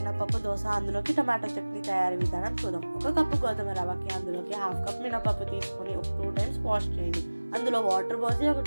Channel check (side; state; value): both; inverted; correlation -1.00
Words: దోశ, అందులోకి టమాటో చట్నీ తయారీ విధానం చూద్దాం. ఒక కప్పు గోధుమ రవ్వకి అందులోకి హాఫ్ కప్ మినపప్పు తీసుకొని ఒక 2 times వాష్ చేయండి. అందులో వాటర్ పోసి ఒక